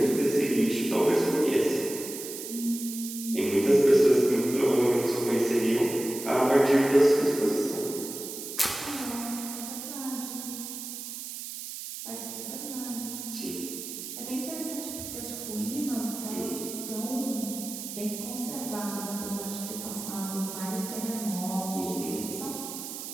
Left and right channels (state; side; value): noise; right; hiss, 8 dB below the sound